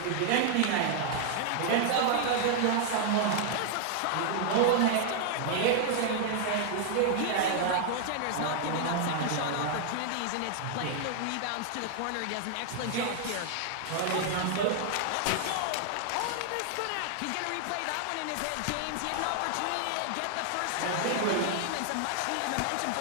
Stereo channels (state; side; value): different; both; correlation 0.00